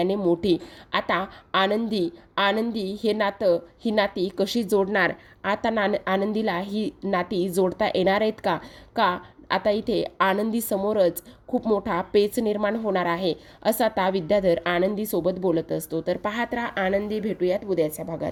मोठी. आता आनंदी हे नातं, ही नाती कशी जोडणार? आता आनंदीला ही नाती जोडता येणार आहेत का? आता इथे आनंदी समोरच खूप मोठा पेच निर्माण होणार आहे, असं आता विद्याधर आनंदी सोबत बोलत असतो. तर पाहत राहा आनंदी. भेटूयात उद्याच्या भागात.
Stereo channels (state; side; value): identical; both; correlation 1.00